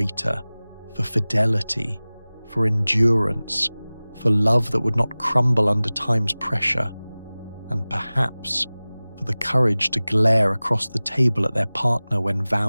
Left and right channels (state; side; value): inverted; both; correlation -0.99